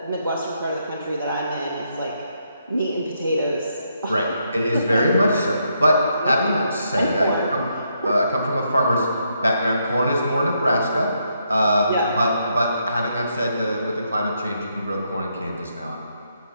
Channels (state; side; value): inverted; both; correlation -0.77